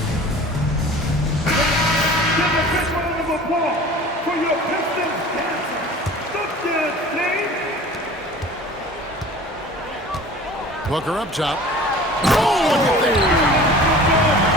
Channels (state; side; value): normal; both; correlation 0.43